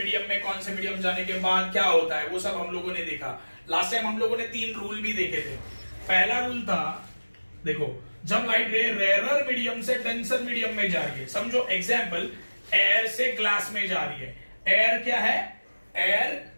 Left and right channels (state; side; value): inverted; both; correlation -1.00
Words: में कौन से मीडियम जाने के बाद क्या होता है, वो सब हम लोगों ने देखा। लास्ट टाइम हम लोगों ने 3 रूल भी देखे थे। पहला रूल था, देखो जब लाइट रे रेयरर मीडियम से डेंसर मीडियम में जा रही है, समझो एग्जाम्पल एयर से ग्लास में जा रही है। एयर क्या है, एयर